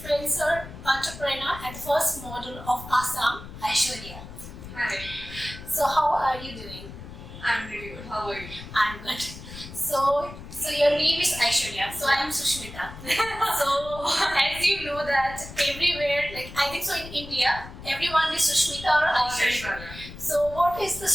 entrepreneur and the first model of Assam, Aishwarya. Hi, So how are you doing? I'm really good. How are you? I'm good. So your name is Aishwarya. So I am Sushmita. So as you know that everywhere, like I think so in India, everyone is Sushmita or Aishwarya. So what is the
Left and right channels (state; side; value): noise; left; rumble, 13 dB below the sound